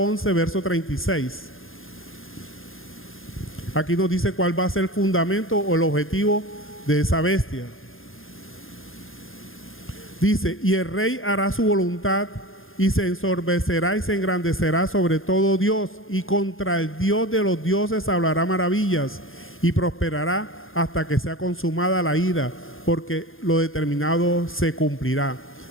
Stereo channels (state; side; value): late; right; 0.60 ms